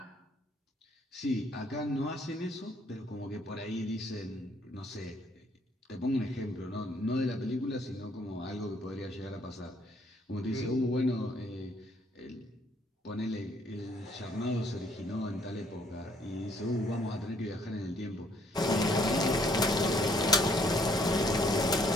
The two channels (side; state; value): both; normal; correlation 0.65